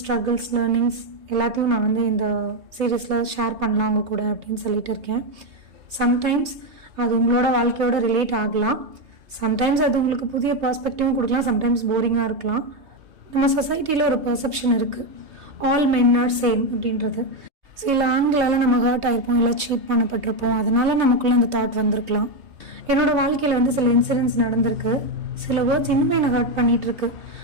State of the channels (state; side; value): late; left; 3.2 ms